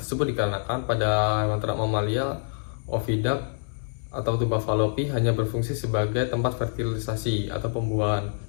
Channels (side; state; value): right; silent; digital silence